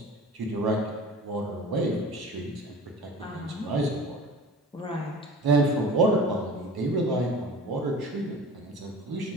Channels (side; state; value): both; normal; correlation 0.39